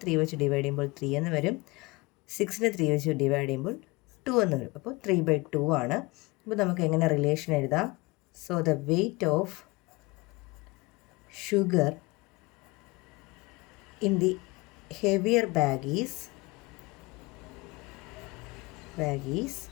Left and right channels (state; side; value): quieter; right; 24.1 dB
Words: 3 വെച്ച് ഡിവൈഡ് ചെയ്യുമ്പോൾ 3 എന്ന് വരും. 6നെ 3 വെച്ച് ഡിവൈഡ് ചെയ്യുമ്പോൾ 2 എന്ന് വരും. അപ്പോൾ 3/2 ആണ്. അപ്പോൾ നമുക്ക് എങ്ങനെ റിലേഷൻ എഴുതാം? So the weight of sugar in the heavier bag is